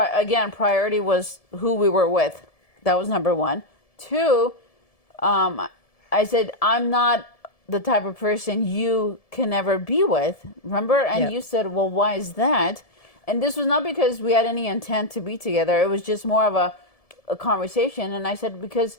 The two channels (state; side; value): late; right; 1.7 ms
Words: priority was who we were with. That was number one. Two, I said, I'm not the type of person you can ever be with. Remember? And Yeah. you said, well, why is that? And this was not because we had any intent to be together. It was just more of a conversation. And I said, because